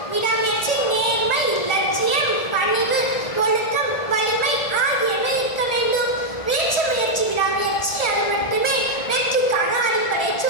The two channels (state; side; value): late; right; 1.4 ms